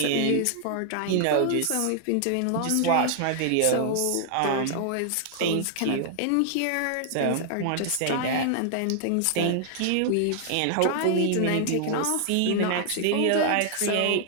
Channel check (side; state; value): both; different; correlation -0.01